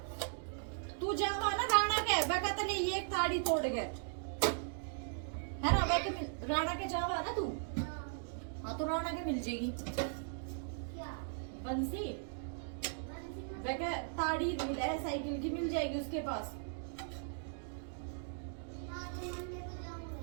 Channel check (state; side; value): silent; left; digital silence